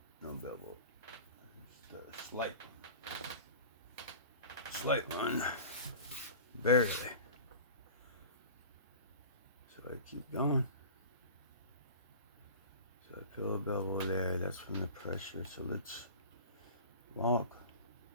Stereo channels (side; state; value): both; inverted; correlation -0.38